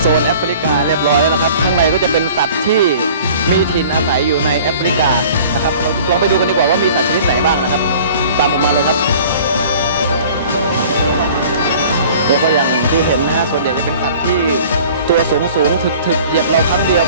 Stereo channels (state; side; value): inverted; both; correlation -0.47